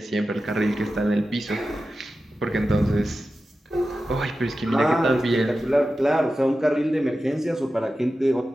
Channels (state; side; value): normal; both; correlation 0.93